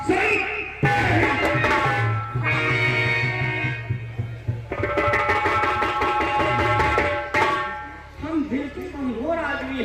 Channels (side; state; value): both; identical; correlation 1.00